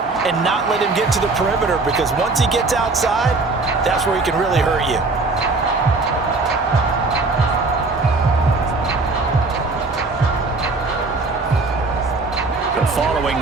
and not let him get to the perimeter because once he gets outside, that's where he can really hurt you. Following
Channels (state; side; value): quieter; left; 3.6 dB